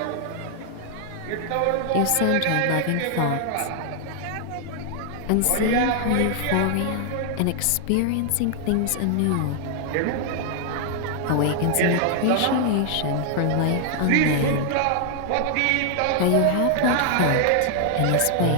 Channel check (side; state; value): both; different; correlation 0.00